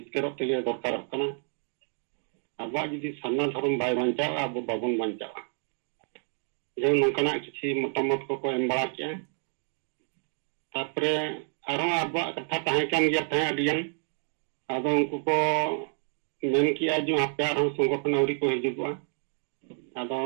दरकार अब जुदी सामना धर्म बै बचा अब बाबन बचा जो नौकना किसी मतामत को एम बड़ा किया अब कथा तहन अब उनको को मेन किया जो आपे संगठन आवरी को हिजुआ अब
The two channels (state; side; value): silent; left; 59 dB below the other